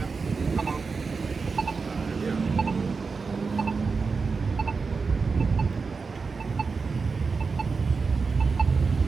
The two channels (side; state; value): left; quieter; 4.7 dB